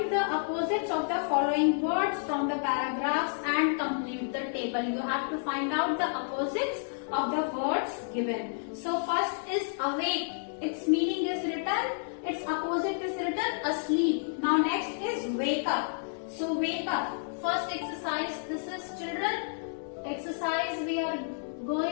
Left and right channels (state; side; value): silent; right; digital silence